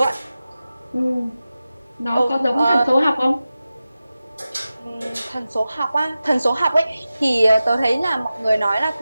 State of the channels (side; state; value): both; inverted; correlation -0.94